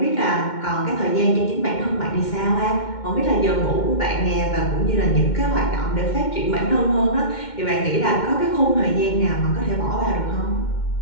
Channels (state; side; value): late; right; 2.1 ms